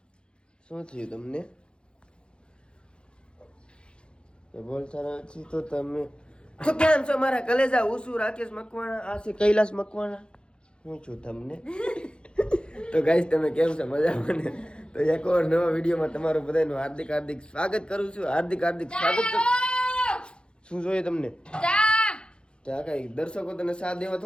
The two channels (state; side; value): late; right; 0.053 ms